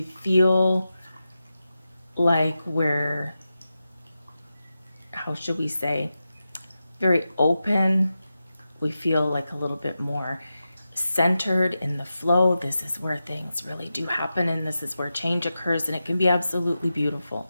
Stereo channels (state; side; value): inverted; both; correlation -0.91